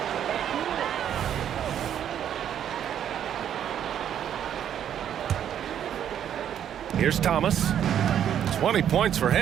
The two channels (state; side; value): quieter; left; 9.7 dB